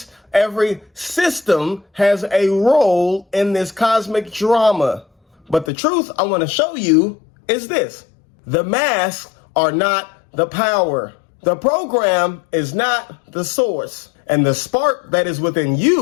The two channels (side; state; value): right; drops out; at 5.7 s